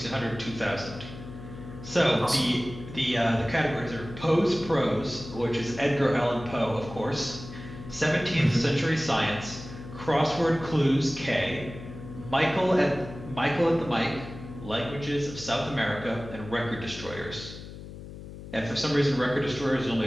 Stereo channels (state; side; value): noise; left; hum, 13 dB below the sound